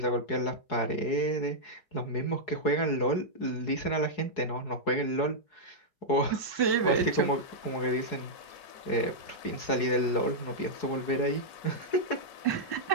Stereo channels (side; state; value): right; late; 4.8 ms